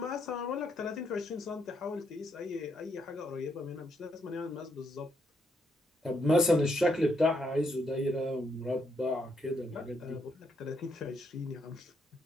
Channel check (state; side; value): normal; both; correlation 0.76